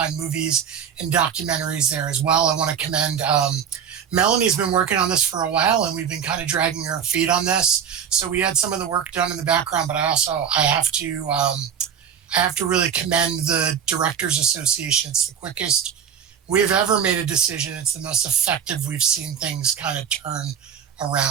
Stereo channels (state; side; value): quieter; left; 8.0 dB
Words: movies and documentaries there as well. I want to commend Melanie's been working on this for a while, and we've been kind of dragging her feet on this. So we had some of the work done in the background, but I have to really commend the Directors Association. It's the quickest we've ever made a decision. It's the most effective we've seen things kind of turn